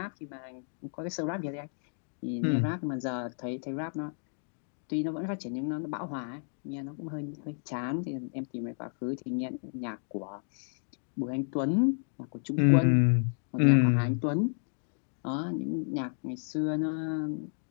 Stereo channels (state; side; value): silent; right; digital silence